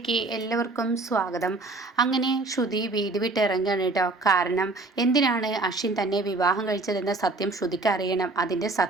എല്ലാവർക്കും സ്വാഗതം. അങ്ങനെ ശ്രുതി വീട് വിട്ടിറങ്ങുകയാണ് കേട്ടോ. കാരണം എന്തിനാണ് അശ്വിൻ തന്നെ വിവാഹം കഴിച്ചതെന്ന സത്യം ശ്രുതിക്ക് അറിയണം. അതിൻ്റെ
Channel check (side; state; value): left; quieter; 3.3 dB